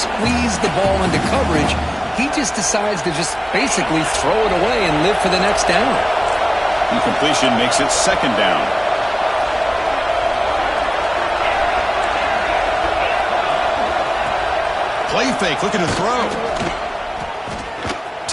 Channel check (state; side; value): identical; both; correlation 1.00